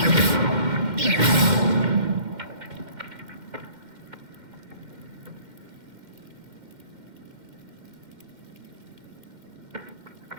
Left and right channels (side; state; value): left; late; 2.1 ms